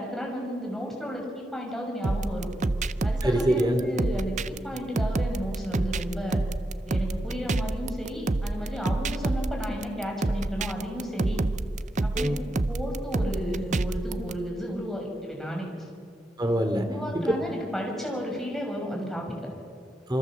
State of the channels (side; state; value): both; normal; correlation 0.85